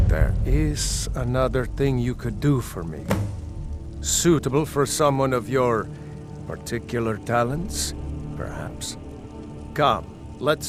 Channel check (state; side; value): identical; both; correlation 1.00